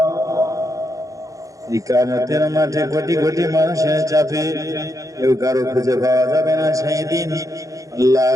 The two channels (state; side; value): late; left; 0.16 ms